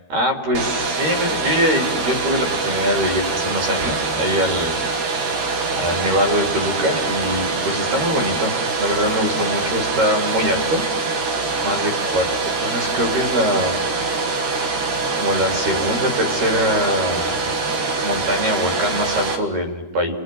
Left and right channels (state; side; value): late; left; 13 ms